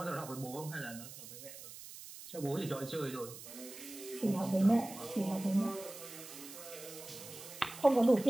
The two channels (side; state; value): right; noise; hiss, 13 dB below the sound